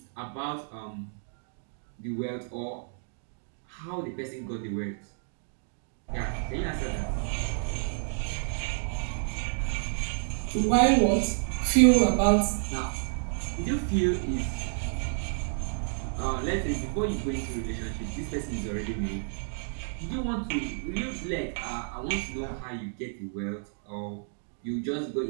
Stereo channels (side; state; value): left; silent; digital silence